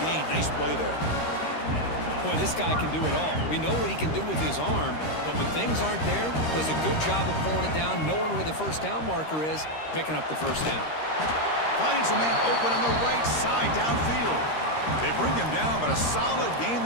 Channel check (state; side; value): late; right; 13 ms